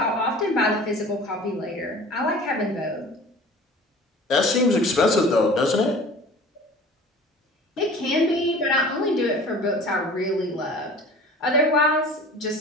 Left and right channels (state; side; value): normal; both; correlation 0.43